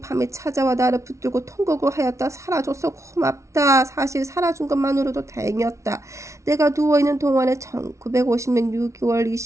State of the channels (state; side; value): late; left; 0.14 ms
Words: 밤에 찾아와 나를 붙들고 통곡을 하였다. 살아줘서 고맙다. 사실 살아준 것만으로도 다행이었다. 내가 누워있는 동안에 1950년 6월